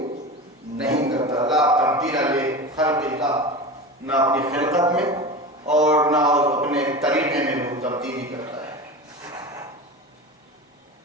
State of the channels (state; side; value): normal; both; correlation 0.28